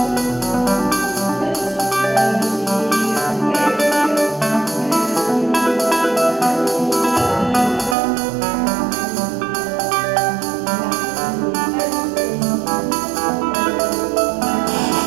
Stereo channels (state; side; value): drops out; left; at 8.0 s